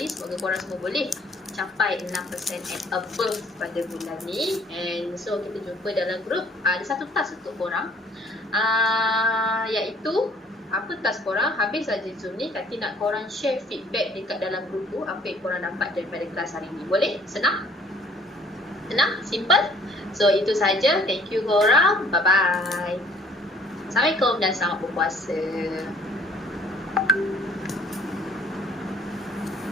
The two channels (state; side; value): normal; both; correlation 0.57